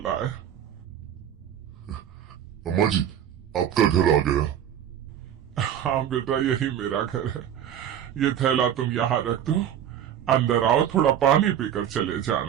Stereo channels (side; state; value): left; quieter; 10.0 dB